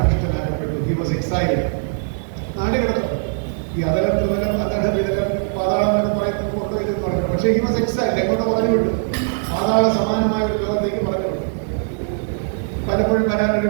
He was exhaled. നാട് കിടന്നു. ഈ അതലം ത്രിതലം അതട വിതലം പാതാളം എന്നൊക്കെ പറയുന്നത് കൊണ്ടോ ഇതെന്ന് പറഞ്ഞു. പക്ഷേ ഹി വാസ് എക്സൈൽഡ്. എങ്ങോട്ട് പറഞ്ഞു വിട്ടു? പാതാള സമാനമായ ഒരു ലോകത്തേക്ക് പറഞ്ഞു വിട്ടു. പലപ്പോഴും വരാനൊരു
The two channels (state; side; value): silent; left; 63 dB below the other